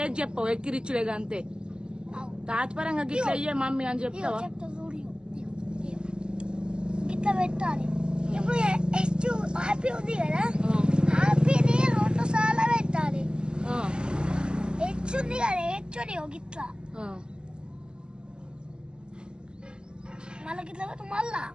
చెప్పవు, ఎక్కిరిచ్చులేగా అంతే. తాత్పరంగా గిట్ల అయ్యే మమ్మీ అని చెప్తావా? గిట్లా పెట్టాలి. ఇప్పుడు హ్యాపీ ఉంది కదా, హ్యాపీని 2 సార్లు పెట్టాలి. హెచ్ ఉంది కదా, హెచ్ని గిట్లా మళ్ళా గిట్లా పెట్టి మళ్ళా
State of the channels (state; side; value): late; left; 0.051 ms